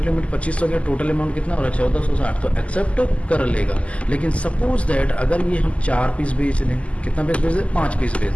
लिमिट 2500 का, टोटल अमाउंट कितना हो रहा है, 1460, तो एक्सेप्ट कर लेगा। लेकिन सपोज दैट अगर ये हम 4 पीस बेच दें, कितना पीस बेच दें, 5 पीस बेच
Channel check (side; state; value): right; late; 0.062 ms